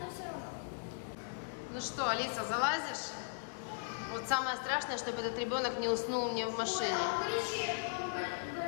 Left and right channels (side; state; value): right; silent; 53 dB below the other